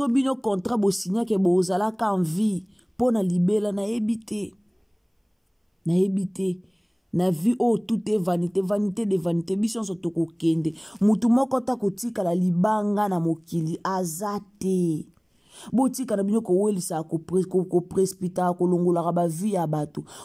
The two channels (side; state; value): both; identical; correlation 1.00